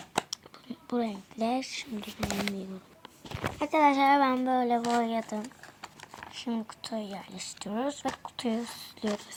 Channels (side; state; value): both; identical; correlation 1.00